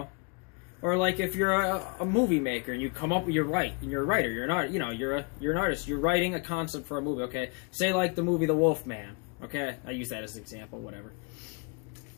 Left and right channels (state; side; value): quieter; right; 32.9 dB